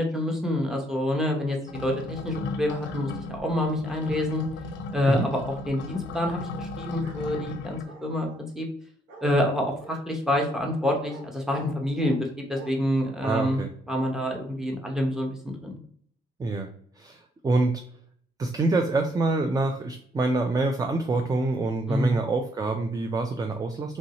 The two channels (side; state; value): both; normal; correlation 0.71